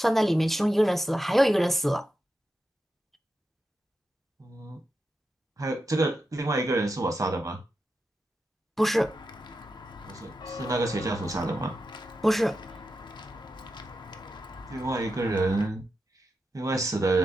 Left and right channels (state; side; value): normal; both; correlation 0.89